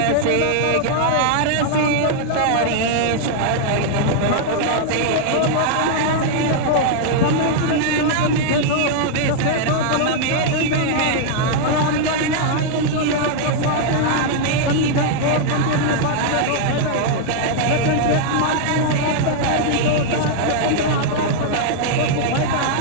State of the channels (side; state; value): both; different; correlation -0.01